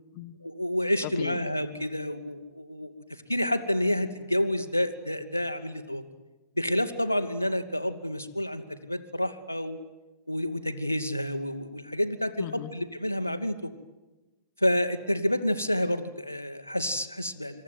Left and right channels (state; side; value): inverted; both; correlation -0.92